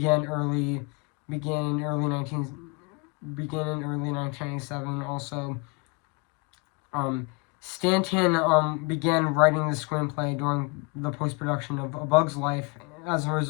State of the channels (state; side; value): quieter; right; 30.3 dB